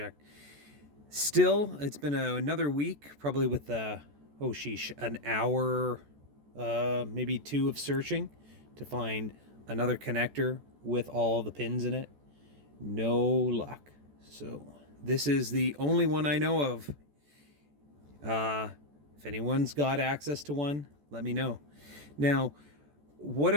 Still, it's been another week, probably with oh sheesh, an hour, maybe two of searching to find another connector with all the pins in it. No luck. So, this is the only one I know of. If anyone's got access to one, let me know. Now, what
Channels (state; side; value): late; left; 14 ms